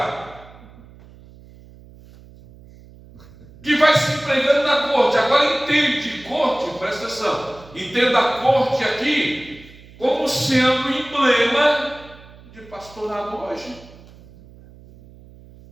que vai se empregando na corte. Agora entende, corte, presta atenção, entenda a corte aqui como sendo emblema de pastorado hoje.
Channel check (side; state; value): right; noise; hum, 22 dB below the sound